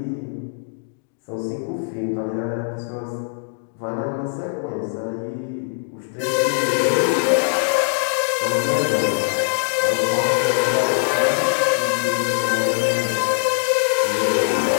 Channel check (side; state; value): right; silent; digital silence